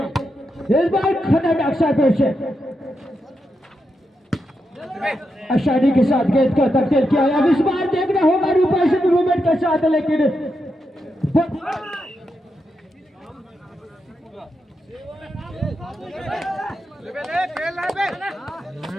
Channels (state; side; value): normal; both; correlation 0.85